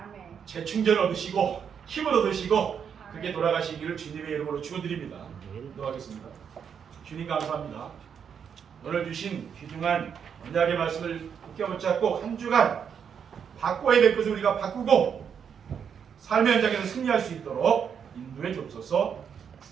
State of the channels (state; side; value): quieter; left; 7.4 dB